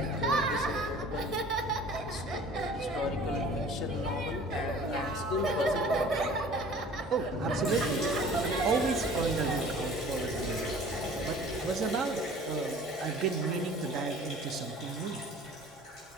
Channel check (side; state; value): both; normal; correlation 0.47